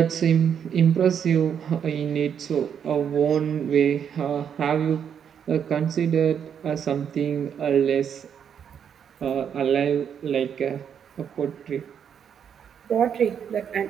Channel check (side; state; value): left; quieter; 8.1 dB